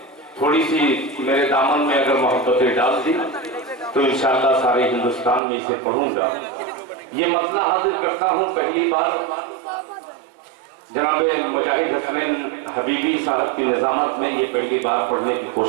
थोड़ी सी मेरे दामन में अगर मोहब्बतें डाल दी तो इंशाअल्लाह सारे हिंदुस्तान में इसे पढ़ूंगा। ये मतला हाजिर करता हूँ पहली बार जनाब मुजाहिद हसनैन हबीबी साहब की निजामत में, ये पहली बार पढ़ने की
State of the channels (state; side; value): drops out; left; at 5.4 s